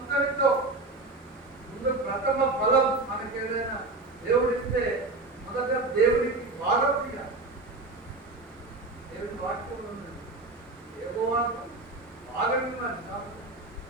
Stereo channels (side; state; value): left; quieter; 3.2 dB